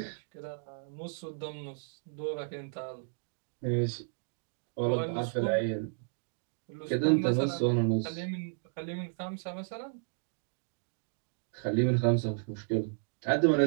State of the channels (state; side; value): silent; left; digital silence